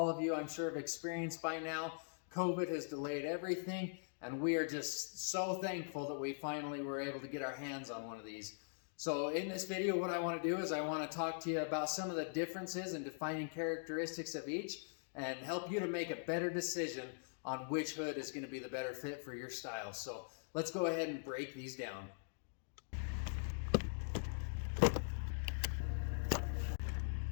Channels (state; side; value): silent; right; digital silence